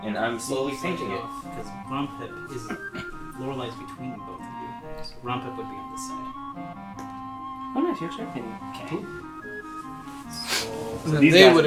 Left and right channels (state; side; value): identical; both; correlation 1.00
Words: and I'm slowly painting it. Because Ronpip is... Lorelei's between both of you. So Ronpip would be on this side. Oh, nice. You're checking. Okay. So... And then these they guys would